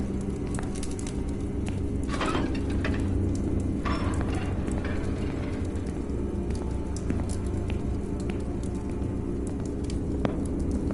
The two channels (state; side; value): identical; both; correlation 1.00